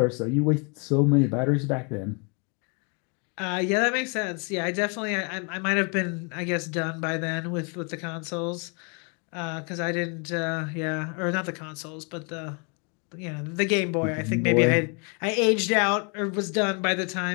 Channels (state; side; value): quieter; right; 35.3 dB